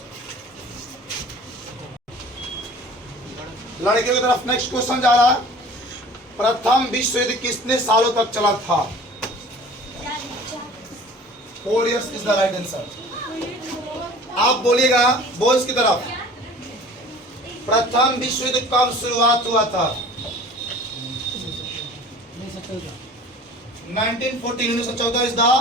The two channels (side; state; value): both; normal; correlation 0.45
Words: लड़कियों की तरफ नेक्स्ट क्वेश्चन जा रहा है। प्रथम विश्व युद्ध कितने सालों तक चला था? 4 years is the right answer. आप बोलिएगा बॉयज की तरफ। प्रथम विश्व युद्ध कब शुरुआत हुआ था? 1914 इज द